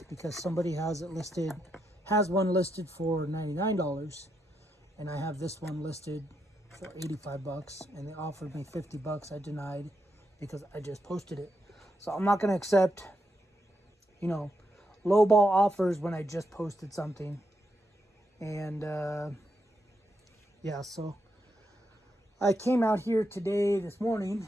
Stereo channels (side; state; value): both; normal; correlation 0.82